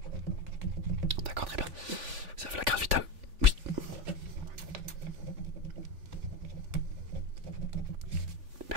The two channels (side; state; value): left; late; 3.5 ms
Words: D'accord, très bien. Vous avez la carte vitale? Oui.